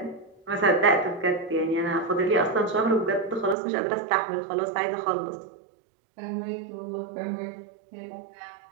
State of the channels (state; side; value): drops out; left; at 3.6 s